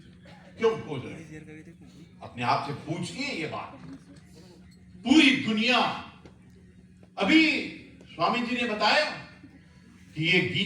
क्यों खोज रहे हैं? अपने आप से पूछिए ये बात। पूरी दुनिया, अभी स्वामी जी ने बताया कि ये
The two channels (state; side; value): identical; both; correlation 1.00